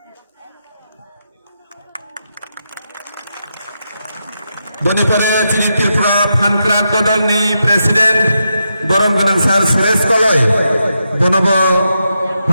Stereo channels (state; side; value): inverted; both; correlation -0.85